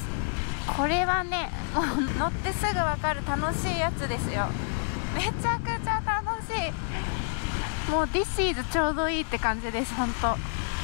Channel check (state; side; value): silent; right; 59 dB below the other